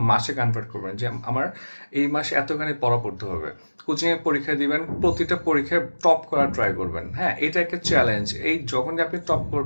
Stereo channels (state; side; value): inverted; both; correlation -1.00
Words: মাসে কনভার্ট করবেন, যে আমার এই মাসে এতখানি পড়া পড়তে হবে। কোচিংয়ে পরীক্ষা দিবেন, প্রতিটা পরীক্ষায় টপ করার ট্রাই করবেন। হ্যাঁ, এটা একটা চ্যালেঞ্জ। এই যখনই আপনি টপ